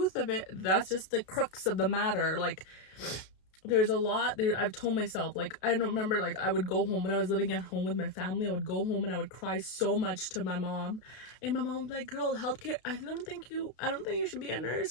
of it. That's just the crux of the matter. Like, there's a lot there. I've told myself, like, I don't remember, like, I would go home when I was living at home with my family. I would go home and I would cry so much to my mom, and my mom was like, girl, healthcare, I don't think you should be a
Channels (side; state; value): right; late; 32 ms